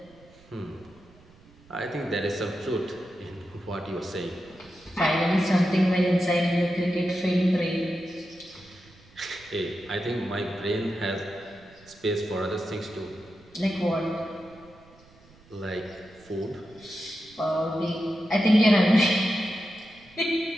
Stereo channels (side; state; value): right; noise; rumble, 26 dB below the sound